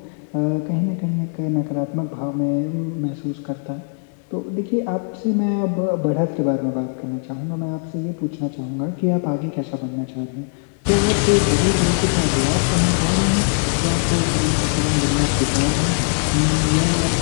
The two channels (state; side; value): silent; right; 65 dB below the other